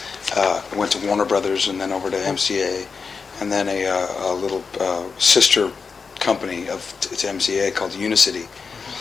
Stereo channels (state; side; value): quieter; right; 5.2 dB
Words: went to Warner Brothers and then over to MCA, and then a little sister company to MCA called Unicity,